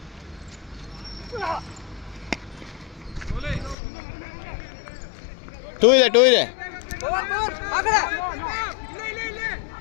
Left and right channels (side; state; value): right; drops out; at 3.8 s